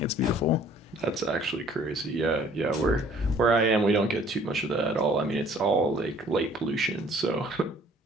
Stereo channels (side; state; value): both; normal; correlation 0.56